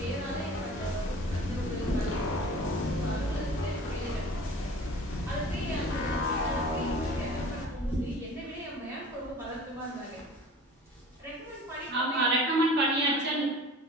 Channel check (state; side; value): normal; both; correlation 0.43